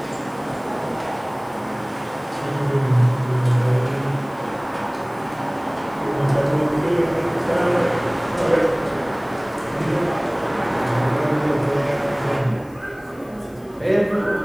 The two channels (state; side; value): noise; left; hiss, 29 dB below the sound